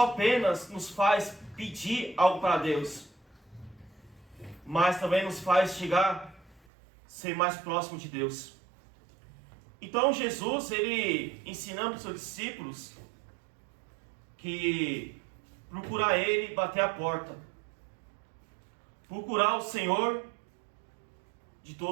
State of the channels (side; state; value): left; drops out; at 6.6 s